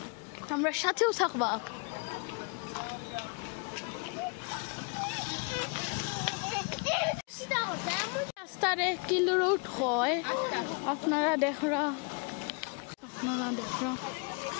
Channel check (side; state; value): right; quieter; 36.0 dB